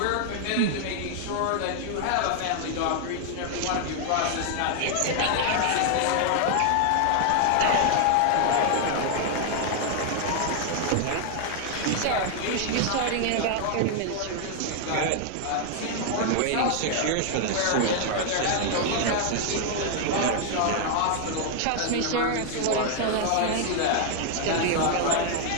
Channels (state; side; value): different; both; correlation 0.00